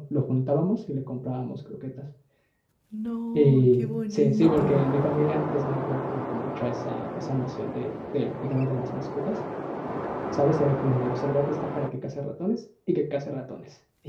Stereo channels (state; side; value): identical; both; correlation 1.00